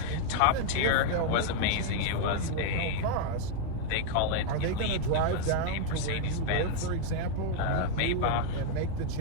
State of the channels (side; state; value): both; different; correlation 0.00